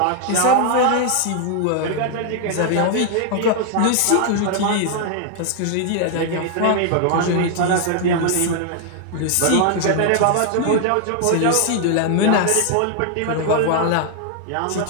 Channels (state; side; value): different; both; correlation 0.00